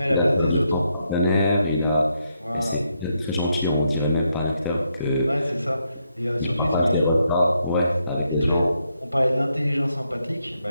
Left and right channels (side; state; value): both; inverted; correlation -0.79